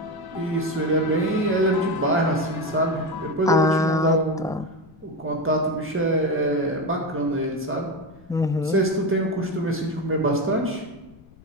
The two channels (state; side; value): noise; left; rumble, 25 dB below the sound